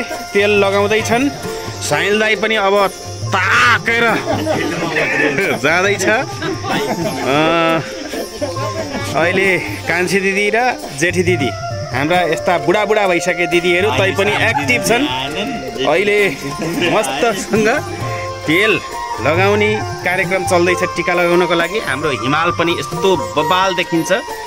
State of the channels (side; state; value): both; identical; correlation 1.00